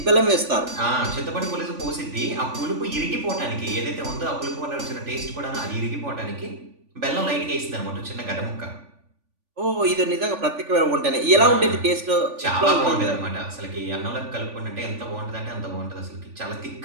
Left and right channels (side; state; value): left; late; 3.5 ms